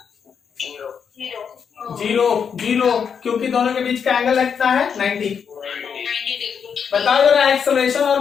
जीरो, क्योंकि दोनों के बीच का एंगल लगता है 90। बताओ जरा एक्सेलरेशन और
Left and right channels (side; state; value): right; quieter; 6.9 dB